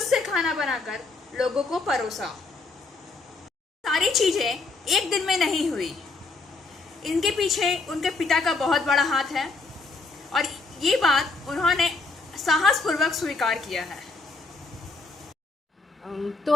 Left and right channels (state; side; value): quieter; right; 3.7 dB